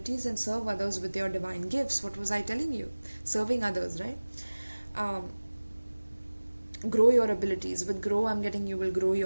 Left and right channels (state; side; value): inverted; both; correlation -1.00